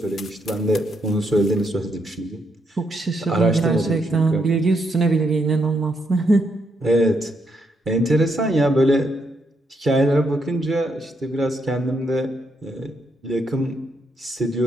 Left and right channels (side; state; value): both; normal; correlation 0.78